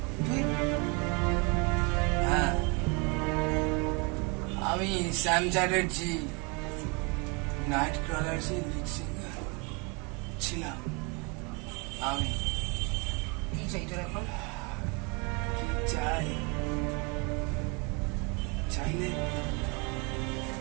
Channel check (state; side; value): quieter; left; 31.3 dB